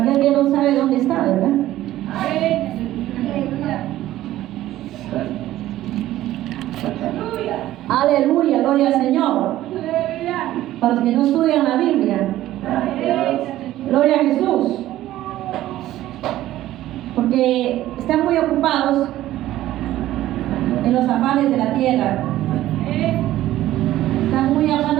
que no sabe dónde está, ¿verdad? Aleluya, gloria al Señor. Para los que no estudian la Biblia, gloria a Jesús. Porque están muy ocupados en los afanes de la tierra. Están muy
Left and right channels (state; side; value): quieter; left; 14.4 dB